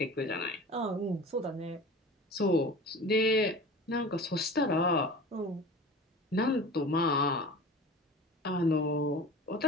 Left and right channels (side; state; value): both; normal; correlation 0.38